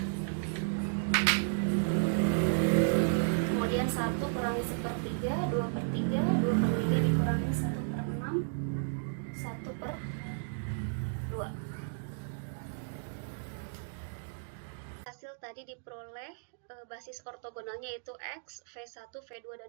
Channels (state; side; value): silent; left; digital silence